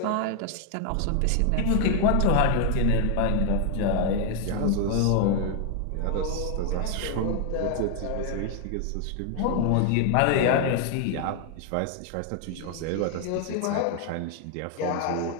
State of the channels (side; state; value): both; different; correlation 0.00